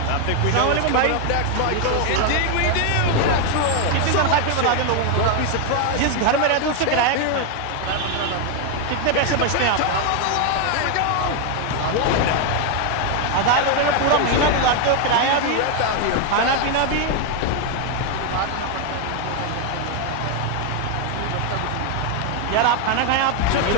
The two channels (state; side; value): different; both; correlation 0.01